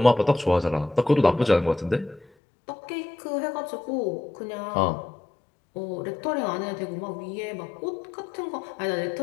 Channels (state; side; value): drops out; right; at 2.2 s